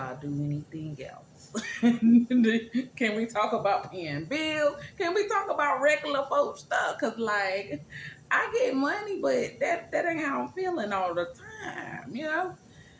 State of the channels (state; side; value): identical; both; correlation 1.00